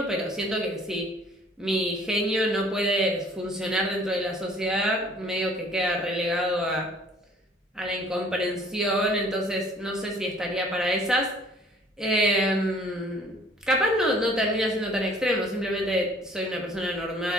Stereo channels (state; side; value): normal; both; correlation 0.55